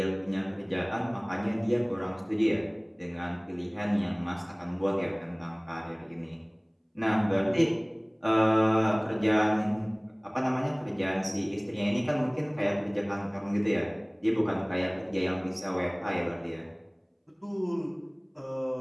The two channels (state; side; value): identical; both; correlation 1.00